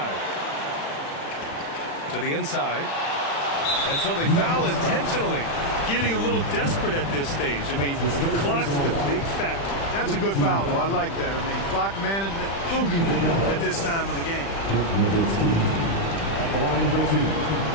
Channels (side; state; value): right; late; 36 ms